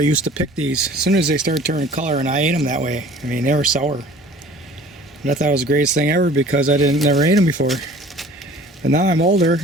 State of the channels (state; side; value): normal; both; correlation 0.48